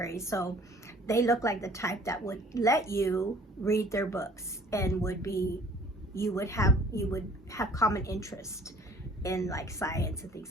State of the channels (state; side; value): normal; both; correlation 0.53